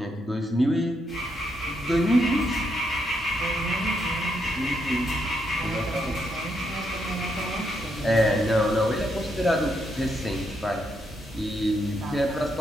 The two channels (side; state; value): both; normal; correlation 0.78